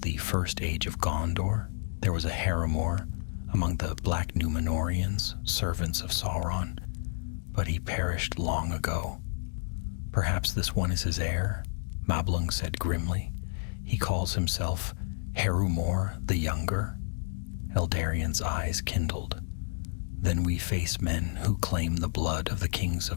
the first age of Gondor, there was a Harrimor among the Black Númenóreans, servants of Sauron, but he perished long ago. "Perhaps this one is his heir," Mablung said grimly. "He calls himself Harrimor the Younger." Eldarian's eyes kindled. "Then we face men who claim the blood of the kings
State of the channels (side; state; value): right; silent; digital silence